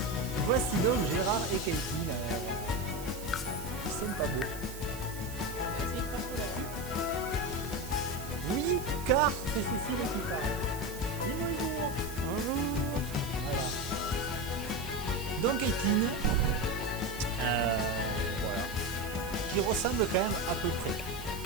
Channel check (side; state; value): right; noise; hiss, 13 dB below the sound